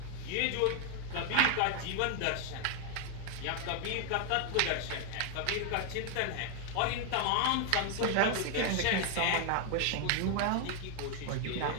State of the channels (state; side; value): different; both; correlation 0.01